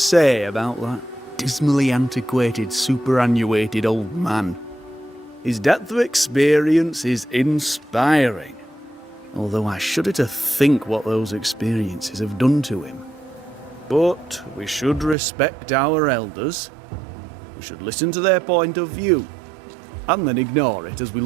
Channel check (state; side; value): drops out; left; at 15.2 s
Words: about that dismally antiquated, superannuated old man. His depth of experience is inspiring, although I shudder to think what those experiences have done to him. But we should respect our elders. We should listen to their point of view, and then ignore it as we